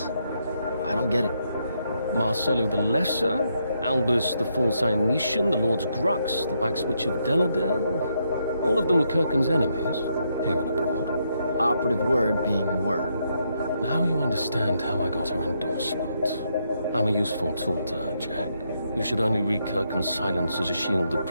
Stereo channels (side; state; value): both; inverted; correlation -0.78